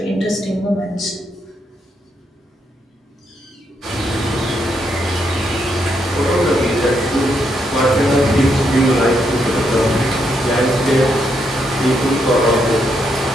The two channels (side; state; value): both; normal; correlation 0.78